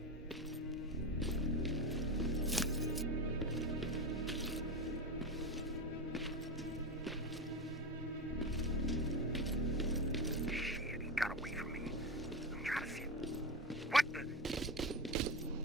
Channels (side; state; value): both; normal; correlation 0.20